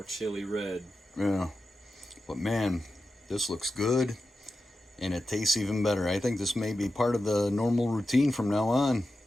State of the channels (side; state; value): both; normal; correlation 0.91